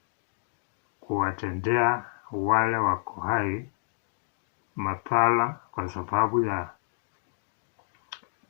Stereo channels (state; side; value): silent; right; digital silence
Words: kuwatendea wale wako hai mapala kwa sababu ya